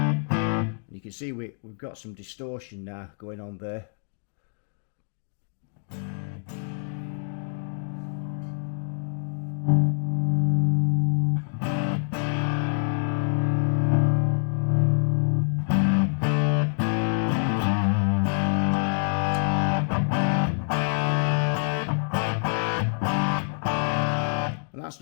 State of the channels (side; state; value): right; silent; 61 dB below the other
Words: You can see we've got some distortion now going on there. That's